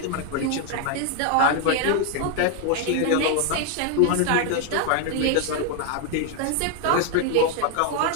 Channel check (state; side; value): different; both; correlation 0.01